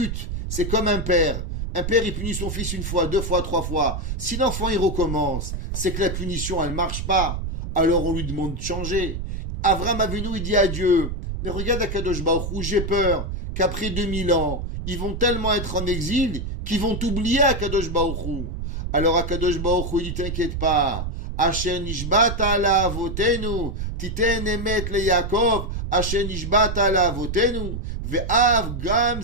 C'est comme un père. Un père, il punit son fils une fois, 2 fois, 3 fois. Si l'enfant, il recommence, c'est que la punition, elle marche pas. Alors on lui demande de changer. Avraham Avinu, il dit à Dieu, mais regarde Akadosh Baruch Hu, j'ai peur qu'après 2000 ans, ils vont tellement être en exil qu'ils vont oublier Akadosh Baruch Hu. Alors Akadosh Baruch Hu, il dit, t'inquiète pas. Asher nishbata ala avotenu, titen emet le Yaakov, asher nishbata ala avotenu, ve'av gam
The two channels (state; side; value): noise; right; rumble, 4 dB below the sound